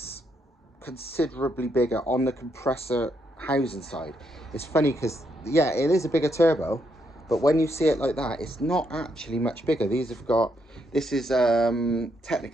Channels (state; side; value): normal; both; correlation 0.77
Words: considerably bigger on the compressor housing side. It's funny because, yeah, it is a bigger turbo, but when you see it like that, it's not actually much bigger. These have got, this is